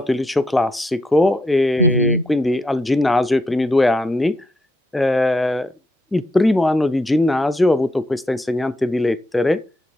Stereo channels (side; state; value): both; normal; correlation 0.79